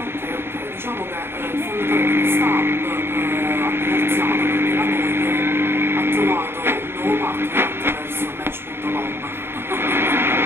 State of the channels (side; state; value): left; late; 0.11 ms